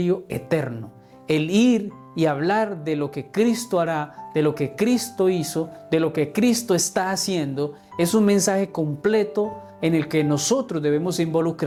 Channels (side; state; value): both; identical; correlation 1.00